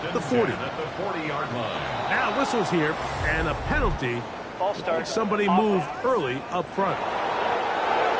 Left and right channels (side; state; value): both; identical; correlation 1.00